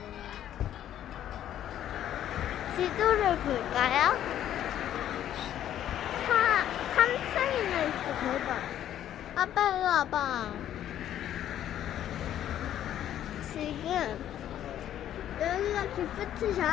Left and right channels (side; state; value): right; quieter; 11.3 dB